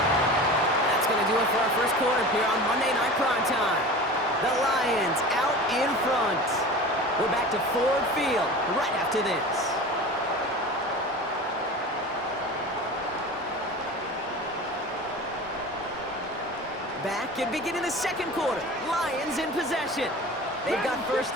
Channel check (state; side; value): normal; both; correlation 0.35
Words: That's going to do it for our first quarter here on Monday Night Primetime. The Lions out in front. We're back to Ford Field right after this. Back and beginning the second quarter. Lions in possession. They've got 1st